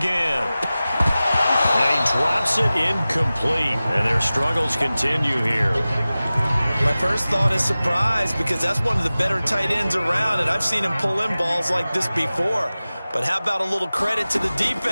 And he drops it incomplete, and their struggles continue here. My first thought is surprise because that's one of the better tight ends around, and I've seen him pull in balls like this before. But how about a little credit to the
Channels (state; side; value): inverted; both; correlation -0.97